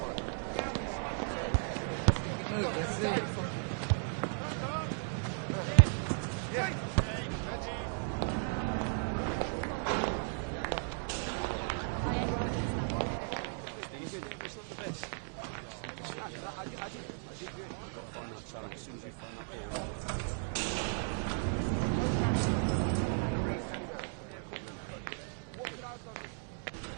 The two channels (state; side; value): silent; left; 54 dB below the other